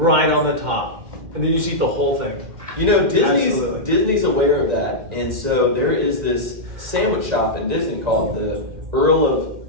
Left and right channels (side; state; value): left; late; 2.1 ms